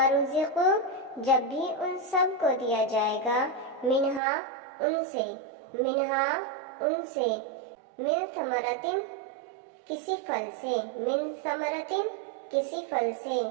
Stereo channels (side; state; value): left; drops out; at 4.2 s